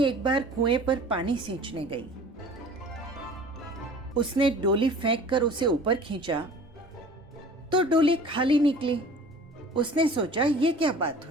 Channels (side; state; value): both; normal; correlation 0.45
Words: एक बार कुएं पर पानी सींचने गई। उसने डोली फेंक कर उसे ऊपर खींचा तो डोली खाली निकली। उसने सोचा ये क्या बात